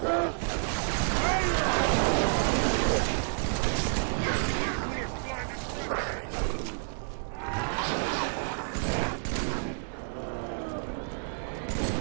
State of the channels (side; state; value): left; silent; digital silence